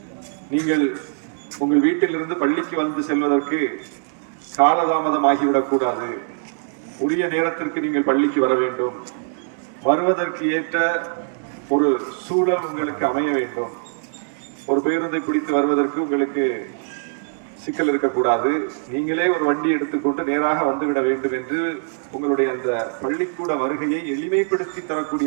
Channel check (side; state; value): left; silent; digital silence